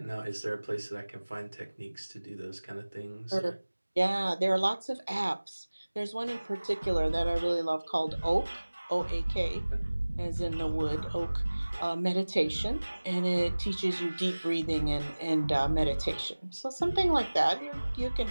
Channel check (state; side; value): inverted; both; correlation -1.00